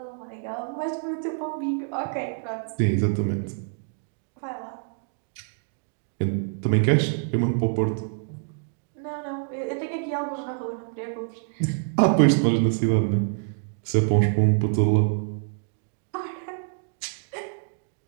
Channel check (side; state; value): left; silent; digital silence